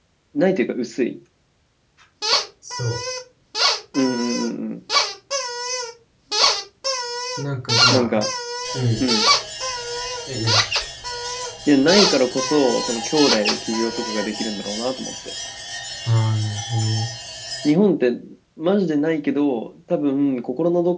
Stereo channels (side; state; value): both; identical; correlation 1.00